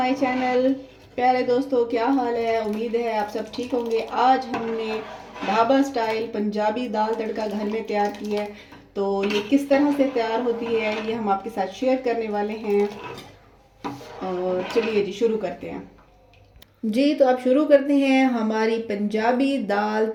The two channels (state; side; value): identical; both; correlation 1.00